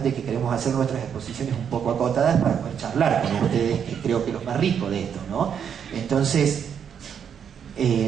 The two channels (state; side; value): quieter; left; 7.9 dB